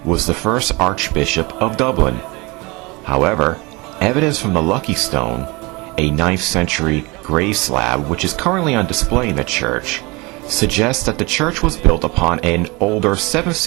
was the first Archbishop of Dublin. However, evidence from the Lucky Stone, a 9th century grave slab which is currently on display in the church, suggests that the church was built upon an older 7th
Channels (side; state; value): left; quieter; 25.5 dB